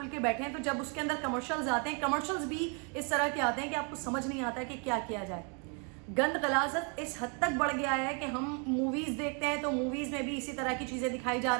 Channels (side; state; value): left; quieter; 36.5 dB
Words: کے بیٹھیں تو جب اس کے اندر کمرشلز آتے ہیں, کمرشلز بھی اس طرح کے آتے ہیں کہ آپ کو سمجھ نہیں آتا ہے کہ کیا کیا جائے. گند غلاظت اس حد تک بڑھ گیا ہے کہ ہم موویز دیکھتے ہیں تو موویز میں بھی اسی طرح کی چیزیں دکھائی جا